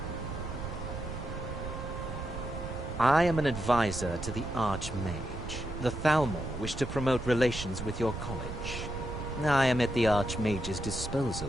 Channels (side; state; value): right; noise; rumble, 7 dB below the sound